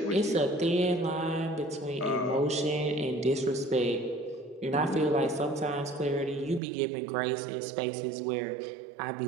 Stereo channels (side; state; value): left; drops out; at 6.6 s